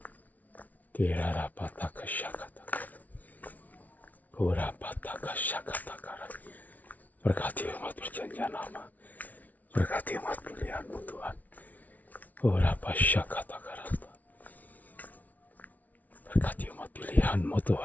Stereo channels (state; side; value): late; right; 0.075 ms